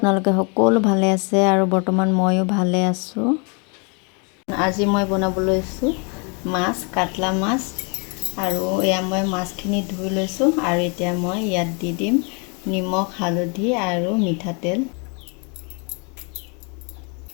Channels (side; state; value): right; quieter; 34.6 dB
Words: সকলো ভালে আছে আৰু বৰ্তমান ময়ো ভালে আছোঁ। আজি মই বনাব লৈছোঁ মাছ, কাটলা মাছ। আৰু এয়া মই মাছখিনি ধুই লৈছোঁ আৰু এতিয়া মই ইয়াত দি দিম নিমখ, হালধি আৰু মিঠাতেল।